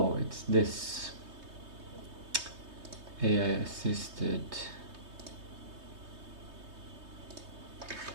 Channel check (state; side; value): late; left; 3.2 ms